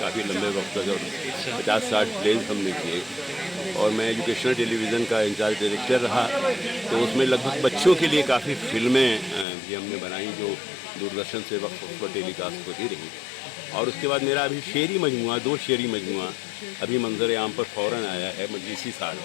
काफ़ी लंबे वक्त तक, और 50-60 प्लेज हमने किए। और मैं एजुकेशनल टेलीविज़न का इंचार्ज डायरेक्टर रहा, तो उसमें लगभग बच्चों के लिए काफ़ी फिल्में भी हमने बनाई जो दूरदर्शन से वक्त पर टेलीकास्ट होती रही। और उसके बाद मेरा अभी शेरी मजमुआ, 2 शेरी मजमुआ अभी मंजर आम पर फ़ौरन आया है मजलिसी साल।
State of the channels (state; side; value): drops out; right; at 9.5 s